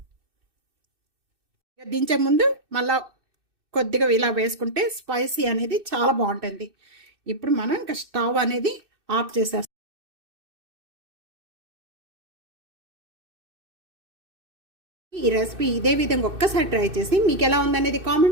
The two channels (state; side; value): late; left; 2.6 ms